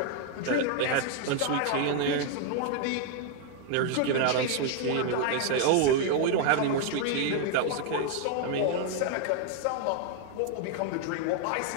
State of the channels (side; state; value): both; different; correlation 0.01